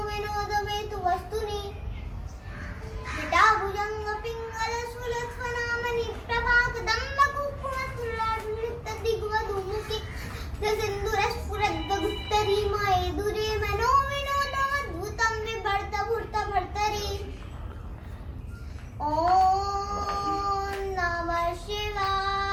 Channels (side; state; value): both; identical; correlation 1.00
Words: विनोद हेतु वस्तुनि जटाभुजङ्ग पिङ्गल सुलक्ष्मणामणि प्रभाकदम्ब कुक्कुमस्तुलाढ्युक्त दिग्वधूमुखि सिन्दूरस्फुरद्गुप्तरी मये दुरे मनो विनोदमद्भुतं बिभर्त भूर्त भर्तरि ॐ नमः